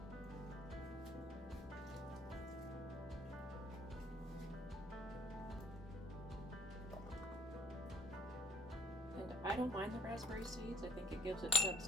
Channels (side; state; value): both; normal; correlation 0.60